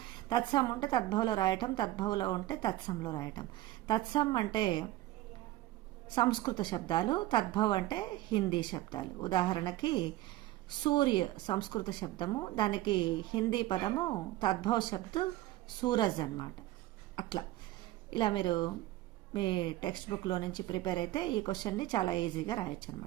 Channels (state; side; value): quieter; left; 16.1 dB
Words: తత్సం ఉంటే తద్భవలో రాయటం, తద్భవలో ఉంటే తత్సంలో రాయటం. తత్సం అంటే సంస్కృత శబ్దాలు, తద్భవ్ అంటే హిందీ శబ్దాలు. ఉదాహరణకి సూర్య సంస్కృత శబ్దము, దానికి హిందీ పదము తద్భవ శబ్దు సూరజ్ అనమాట. అట్లా ఇలా మీరు మీ టెక్స్ట్ బుక్లో నుంచి ప్రిపేర్ అయితే ఈ క్వశ్చన్ని చాలా ఈజీగా రాయొచ్చు